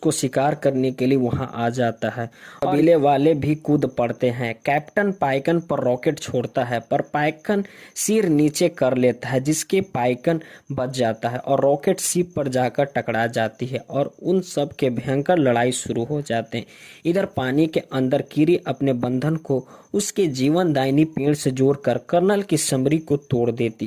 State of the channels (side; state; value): both; identical; correlation 1.00